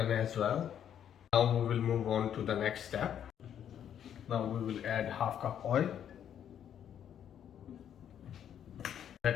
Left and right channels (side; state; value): right; quieter; 9.5 dB